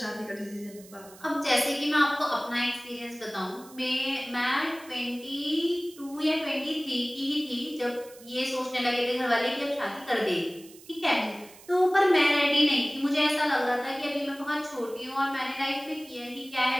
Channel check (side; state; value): right; noise; hiss, 21 dB below the sound